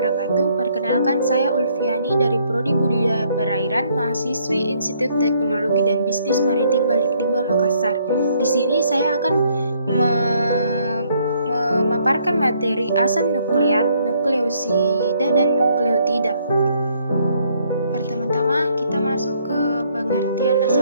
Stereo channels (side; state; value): both; inverted; correlation -0.68